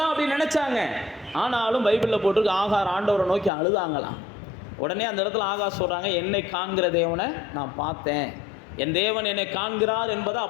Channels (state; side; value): drops out; right; at 3.5 s